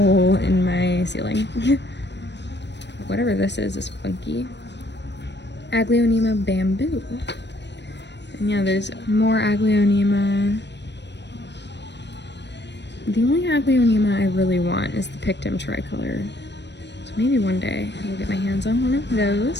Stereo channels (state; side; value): late; right; 0.51 ms